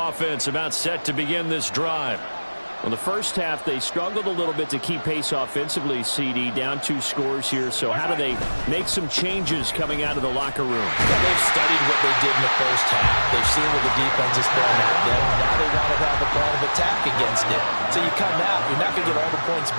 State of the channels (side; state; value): both; inverted; correlation -1.00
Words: about set to begin this drive. Well, the first half, they struggled a little bit to keep pace offensively, CD, down 2 scores here. So how do they make some changes coming out of the locker room? Well, they've studied what they did in the first half. They've seen what the defense is throwing at them. Now they want to have a plan of attack against it. So you come out, you're not going to get all the points